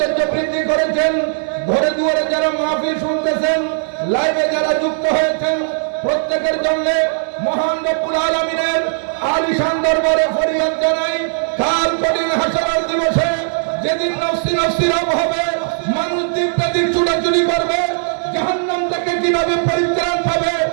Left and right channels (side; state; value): left; silent; 62 dB below the other